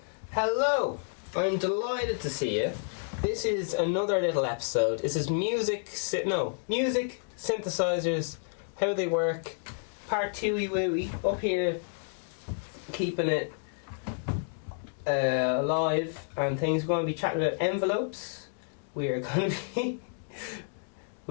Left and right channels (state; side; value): silent; right; digital silence